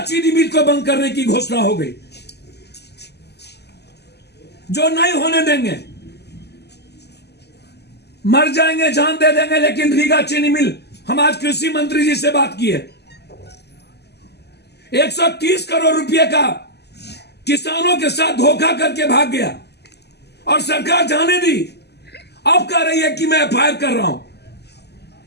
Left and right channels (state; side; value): late; right; 0.49 ms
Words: चीनी मिल को बंद करने की घोषणा हो गई, जो नहीं होने देंगे। मर जाएंगे, जान दे देंगे, लेकिन रीगा चीनी मिल, हम आज कृषि मंत्री जी से बात की है, 130 करोड़ रुपए का किसानों के साथ धोखा करके भाग गया और सरकार जाने दी। अब कह रही है कि मैं एफआईआर कर रहा हूं,